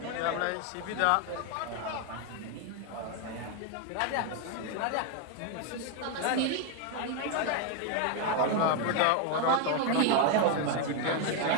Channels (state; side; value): different; both; correlation 0.01